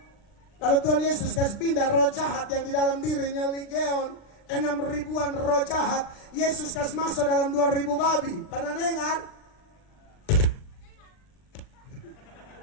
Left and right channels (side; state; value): right; late; 39 ms